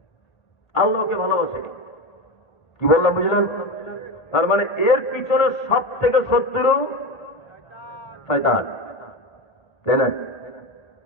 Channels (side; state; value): right; late; 1.8 ms